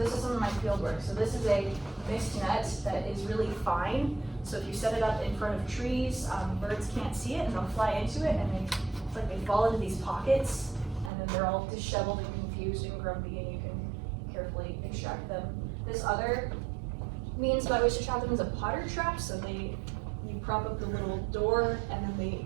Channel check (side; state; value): left; drops out; at 11.1 s